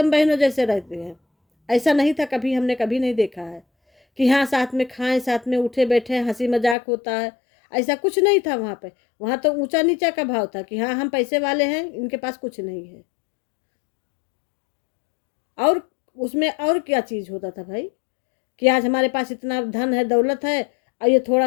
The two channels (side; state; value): right; drops out; at 6.8 s